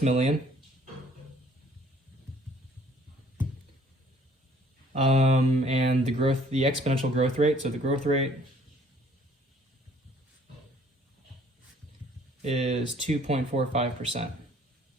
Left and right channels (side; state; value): both; normal; correlation 0.58